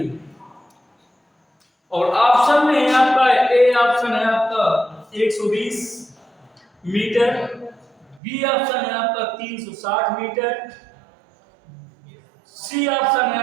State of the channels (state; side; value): drops out; left; at 8.2 s